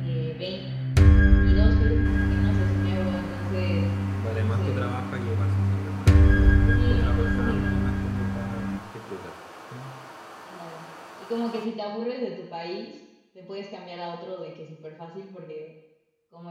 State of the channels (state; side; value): identical; both; correlation 1.00